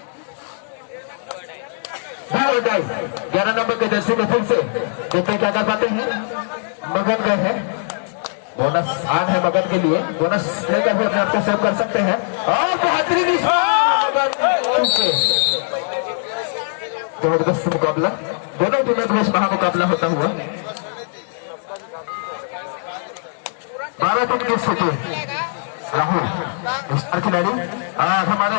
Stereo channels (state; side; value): silent; right; digital silence